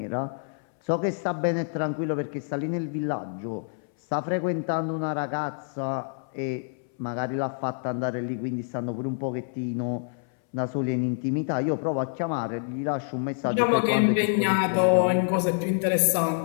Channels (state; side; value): silent; right; 60 dB below the other